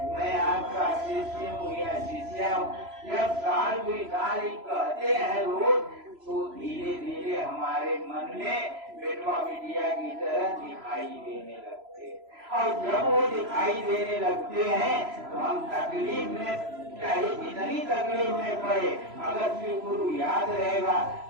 मैं आपका शिष्य हूँ या शिष्या हूँ। जब साल कोई साल ही कहते हैं रोज, तो धीरे धीरे हमारे मन में बेटवा बिटिया की तरह दिखाई देने लगते हैं। और जब वो दिखाई देने लगते हैं तो हम तकलीफ में, चाहे जितनी तकलीफ में पड़े, अगर शिव गुरु याद रहेगा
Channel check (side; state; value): left; late; 3.0 ms